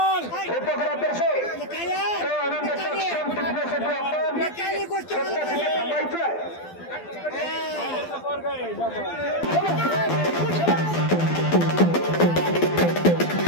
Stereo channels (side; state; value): right; late; 12 ms